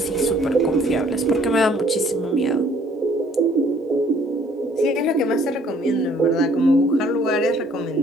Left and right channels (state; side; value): normal; both; correlation 0.61